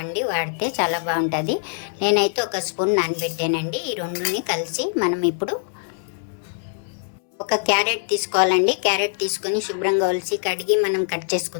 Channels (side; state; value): right; silent; digital silence